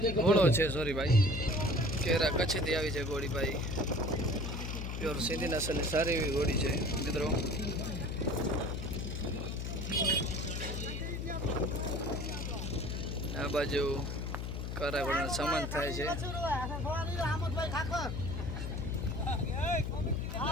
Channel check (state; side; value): noise; left; hum, 4 dB below the sound